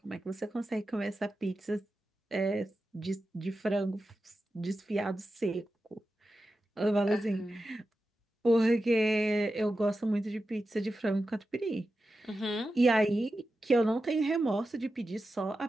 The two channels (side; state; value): both; normal; correlation 0.92